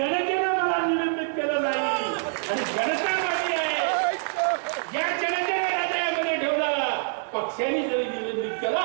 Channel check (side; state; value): left; silent; 61 dB below the other